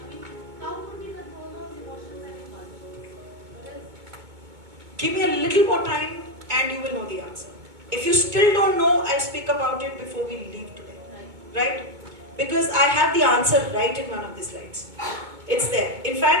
Give me a little more time and you will know the answer. If you still don't know, I'll speak about it before we leave today. Right? Because I have the answer right in one of the slides. It's there. In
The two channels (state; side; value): late; left; 2.2 ms